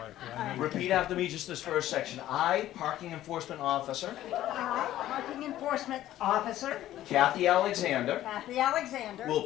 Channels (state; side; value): quieter; right; 13.5 dB